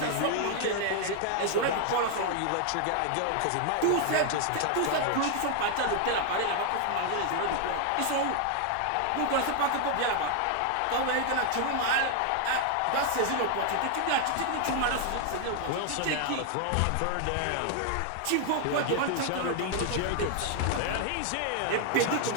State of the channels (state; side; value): different; both; correlation 0.00